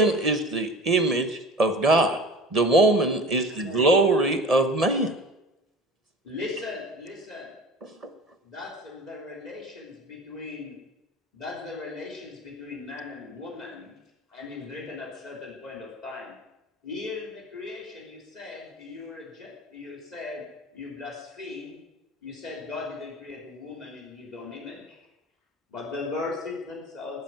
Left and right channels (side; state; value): both; normal; correlation 0.38